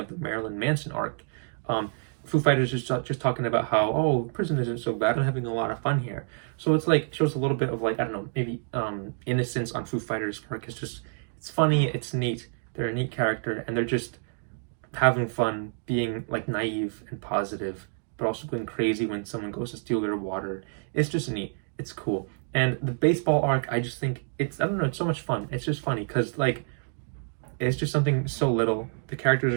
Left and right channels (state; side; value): silent; left; 58 dB below the other